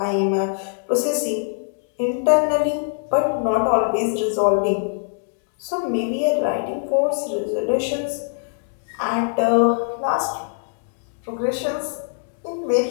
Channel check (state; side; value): silent; right; digital silence